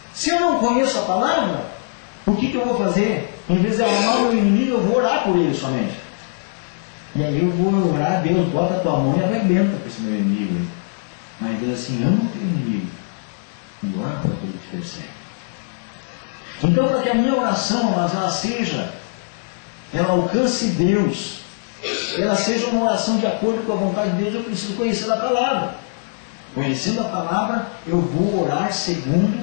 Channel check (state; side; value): silent; right; digital silence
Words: Se eu não conheço a palavra, o que eu vou fazer? Em vez de amar o meu inimigo, eu vou orar por ele somente. E aí eu vou orar: Deus, bota a tua mão e arrebenta para esse meu inimigo. Mas Deus assim: ama o teu inimigo e ora para aquele que te persegue. Então, para que a minha oração ela alcance Deus, ela seja uma oração de acordo com a vontade de Deus, eu preciso conhecer a palavra. Conhecendo a palavra, eu vou orar